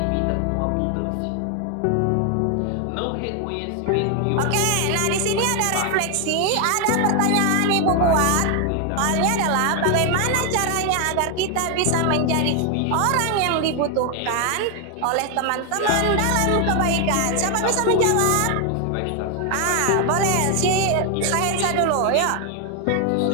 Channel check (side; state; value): both; different; correlation 0.00